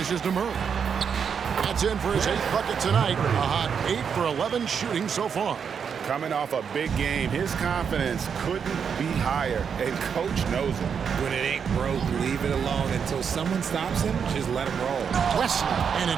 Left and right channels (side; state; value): left; quieter; 6.9 dB